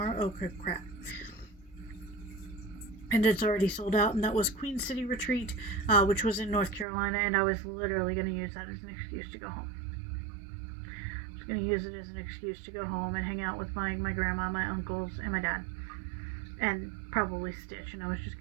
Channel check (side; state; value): left; drops out; at 6.9 s